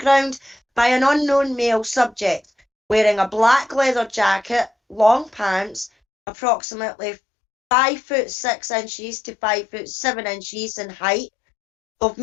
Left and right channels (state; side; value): drops out; right; at 5.9 s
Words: by an unknown male subject wearing a black leather jacket, long pants, approximately 5'6" to 5'7" in height, of